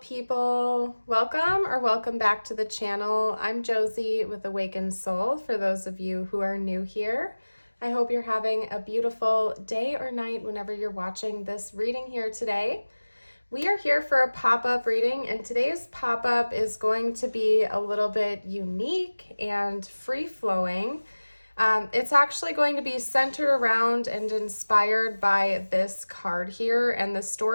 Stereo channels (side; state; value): both; inverted; correlation -1.00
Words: welcome back to the channel. I'm Josie with Awakened Soul for those of you who are new here. I hope you're having a beautiful day or night whenever you're watching this reading here today. We are here for a pop-up reading, and today's pop-up is going to be a little bit unique and free-flowing. It's actually going to be centered around and inspired by this card here, and the